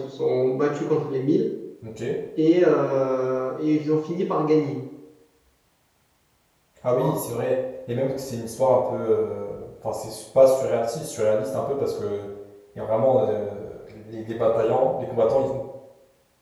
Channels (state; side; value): identical; both; correlation 1.00